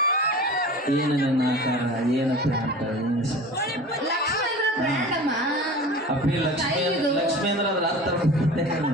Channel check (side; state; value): both; normal; correlation 0.37